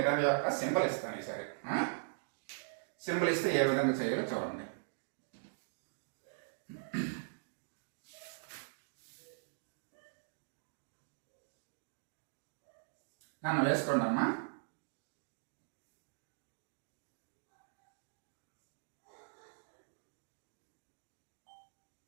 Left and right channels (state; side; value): silent; left; digital silence